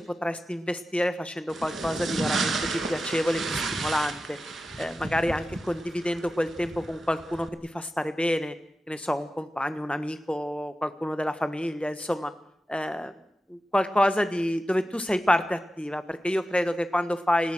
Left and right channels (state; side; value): normal; both; correlation 0.92